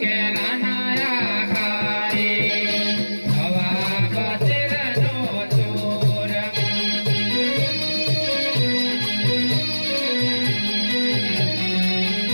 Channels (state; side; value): inverted; both; correlation -1.00